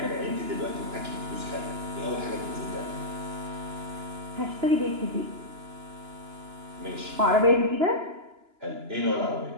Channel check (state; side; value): late; left; 2.9 ms